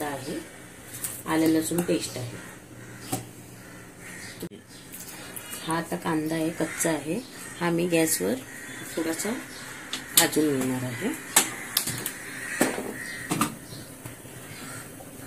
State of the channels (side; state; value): both; identical; correlation 1.00